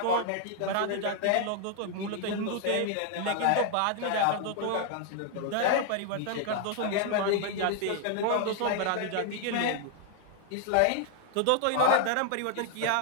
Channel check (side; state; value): both; different; correlation 0.00